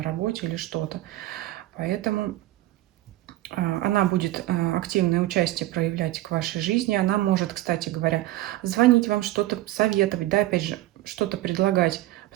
работе или что-то. Поэтому она будет активное участие проявлять к вашей жизни. Она может, кстати говоря, звонить вам, что-то советовать, да, опять же, что-то предлагать,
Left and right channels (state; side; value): quieter; left; 16.2 dB